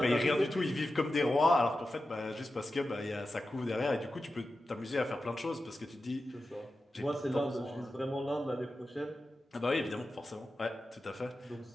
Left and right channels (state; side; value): normal; both; correlation 0.92